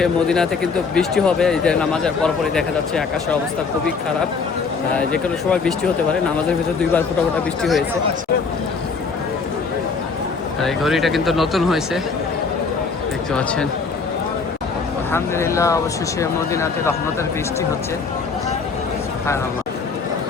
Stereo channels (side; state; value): right; quieter; 4.9 dB